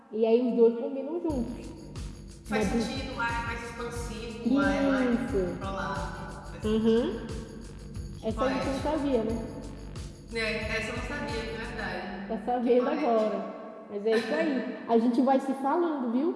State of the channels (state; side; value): identical; both; correlation 1.00